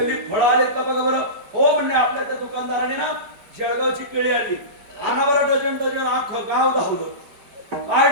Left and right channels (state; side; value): late; left; 4.7 ms